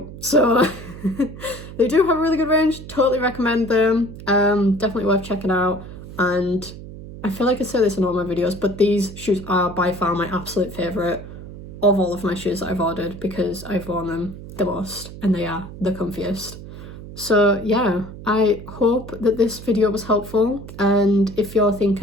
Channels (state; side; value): noise; right; hum, 13 dB below the sound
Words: so they do have a really good range. Totally recommend them. Definitely worth checking out. And I feel like I say this in all my videos, but these shoes are by far my absolute favourite of all of my shoes that I've ordered, because I've worn them the most and they are the comfiest. So yeah, I hope that this video was helpful, and if you're